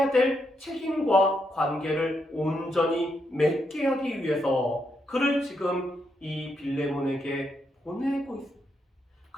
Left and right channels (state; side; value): normal; both; correlation 0.80